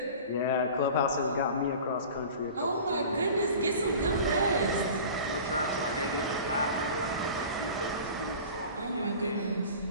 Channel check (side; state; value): both; inverted; correlation -0.39